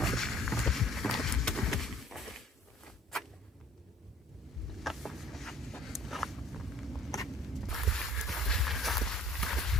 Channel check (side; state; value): both; normal; correlation 0.54